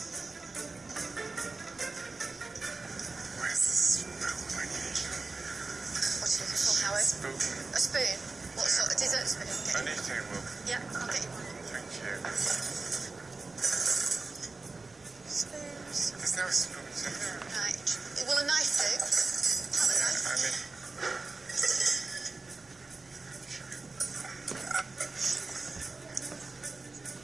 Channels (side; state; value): left; quieter; 3.8 dB